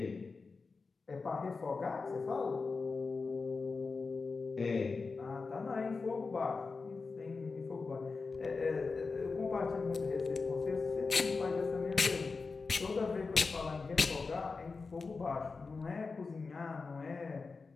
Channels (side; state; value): right; quieter; 4.4 dB